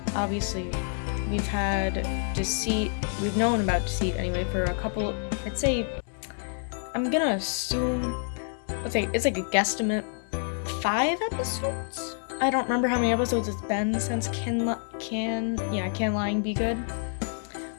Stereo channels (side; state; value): right; silent; 56 dB below the other